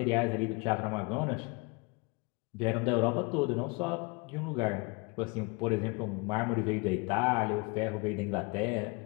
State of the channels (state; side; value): quieter; right; 29.0 dB